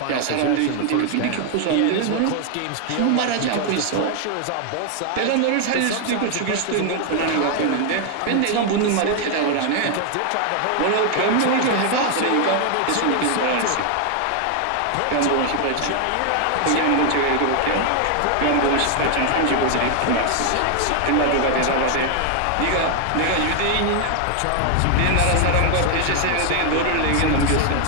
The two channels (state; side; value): different; both; correlation 0.00